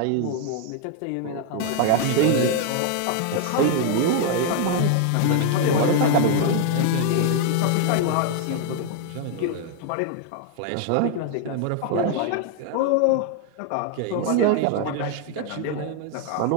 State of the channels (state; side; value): different; both; correlation 0.00